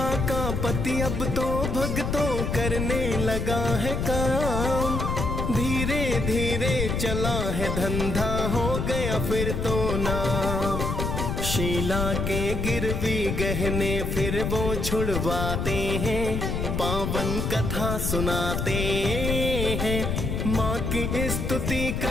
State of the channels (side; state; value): left; noise; rumble, 1 dB below the sound